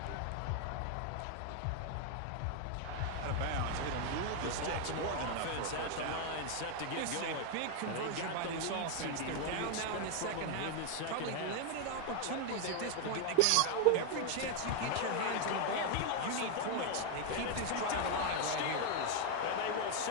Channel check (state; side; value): different; both; correlation 0.01